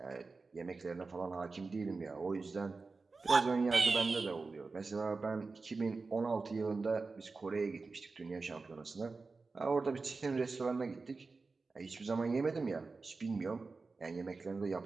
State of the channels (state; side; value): quieter; left; 4.0 dB